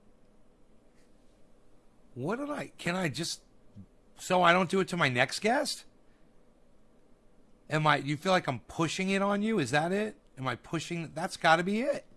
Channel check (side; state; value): both; identical; correlation 1.00